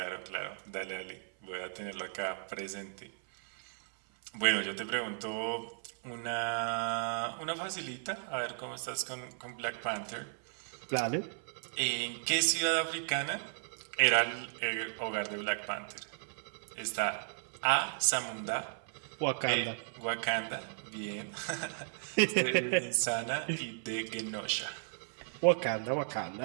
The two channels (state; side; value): silent; left; 54 dB below the other